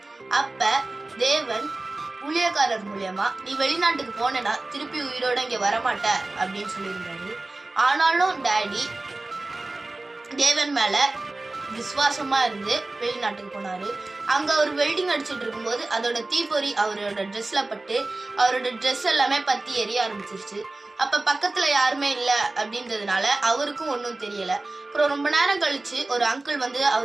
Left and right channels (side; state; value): left; quieter; 3.0 dB